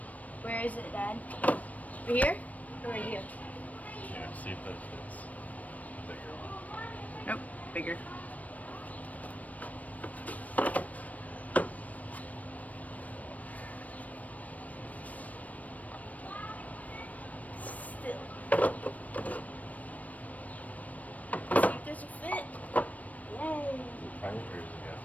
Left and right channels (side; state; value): right; late; 0.071 ms